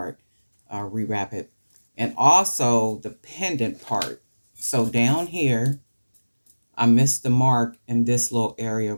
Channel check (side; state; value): both; inverted; correlation -1.00